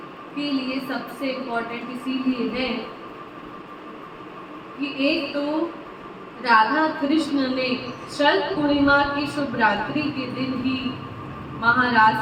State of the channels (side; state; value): both; identical; correlation 1.00